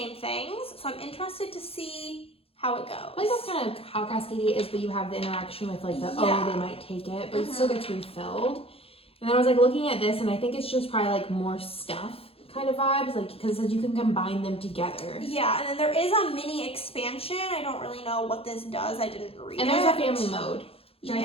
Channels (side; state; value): right; late; 0.27 ms